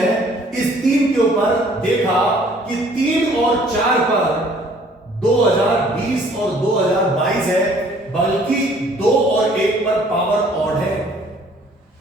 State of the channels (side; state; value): both; normal; correlation 0.57